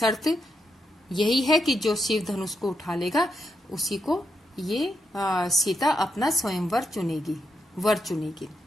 यही है कि जो शिव धनुष को उठा लेगा उसी को ये सीता अपना स्वयंवर वर चुनेगी।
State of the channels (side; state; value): both; normal; correlation 0.82